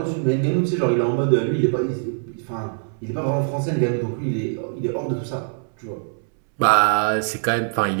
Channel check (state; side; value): silent; left; 63 dB below the other